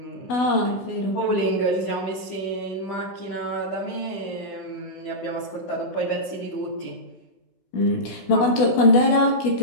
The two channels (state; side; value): late; right; 16 ms